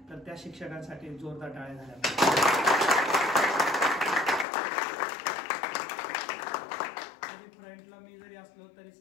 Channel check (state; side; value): drops out; right; at 4.5 s